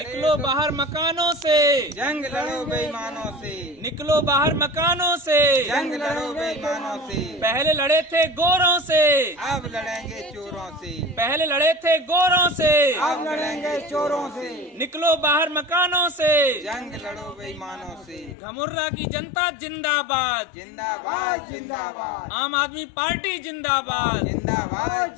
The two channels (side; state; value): right; drops out; at 18.4 s